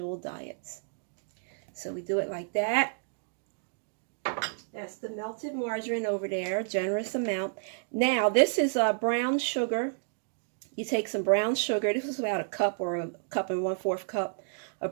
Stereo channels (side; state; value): left; silent; digital silence